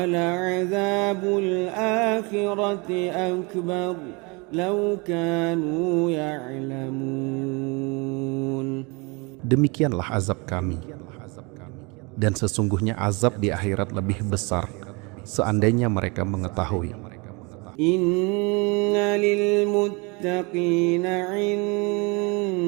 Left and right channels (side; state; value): left; quieter; 29.0 dB